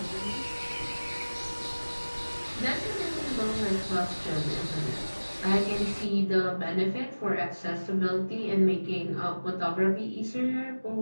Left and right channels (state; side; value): inverted; both; correlation -1.00